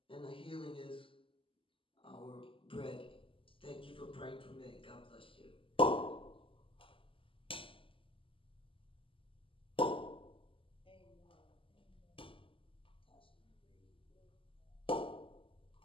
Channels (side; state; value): right; late; 0.25 ms